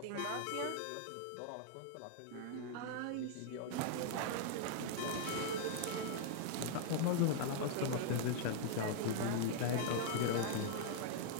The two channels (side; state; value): both; different; correlation -0.01